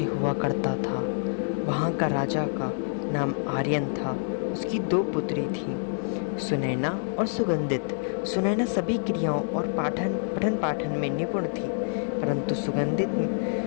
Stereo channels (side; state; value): right; silent; digital silence